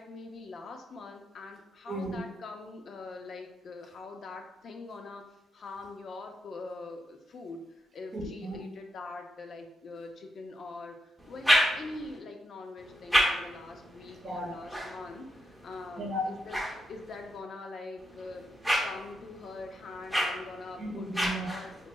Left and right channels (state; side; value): normal; both; correlation 0.83